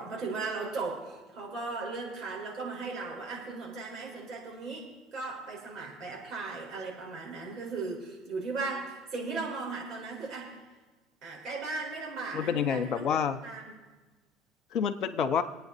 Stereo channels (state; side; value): normal; both; correlation 0.45